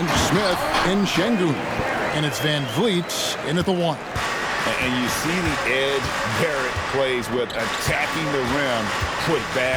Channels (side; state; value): both; identical; correlation 1.00